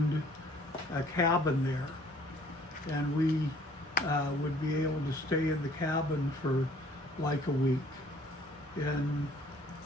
a cabin there. And we would be able to stay in the cabin for like a week. And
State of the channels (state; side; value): normal; both; correlation 0.57